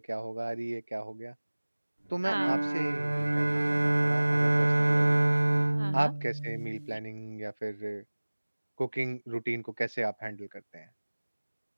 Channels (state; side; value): inverted; both; correlation -1.00